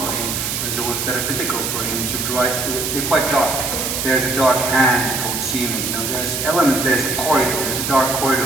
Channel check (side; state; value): right; noise; hiss, 2 dB below the sound